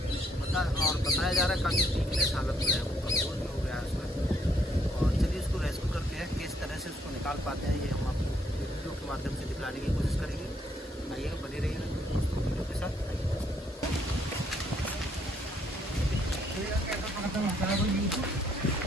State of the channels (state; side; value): normal; both; correlation 0.70